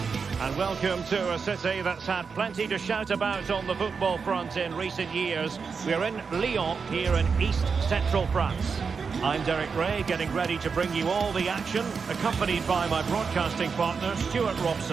And welcome to a city that's had plenty to shout about on the football front in recent years. We're in Lyon, here in East Central France. I'm Derek Ray, getting ready to bring you all the action, accompanied by my broadcasting partner, Stuart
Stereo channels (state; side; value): quieter; left; 5.4 dB